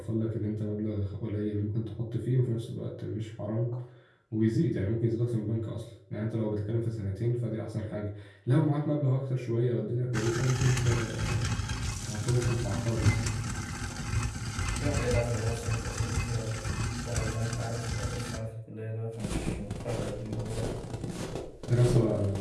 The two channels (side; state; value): both; identical; correlation 1.00